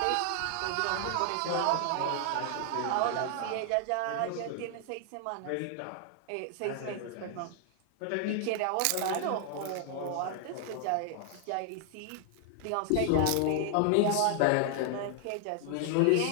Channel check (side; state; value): both; different; correlation 0.00